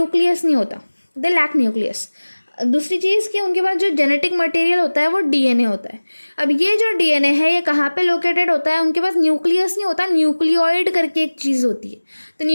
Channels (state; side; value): inverted; both; correlation -1.00